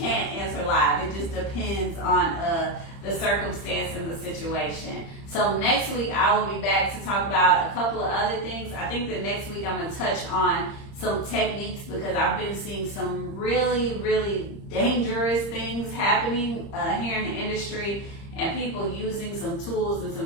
answer live. It just depends on the circumstance and the situation. So next week I will be back to talk about a couple of other things. I think the next week I'm going to touch on some techniques, because I've been seeing some really, really dangerous things happening here in the industry, and people using some tools in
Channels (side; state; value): right; late; 30 ms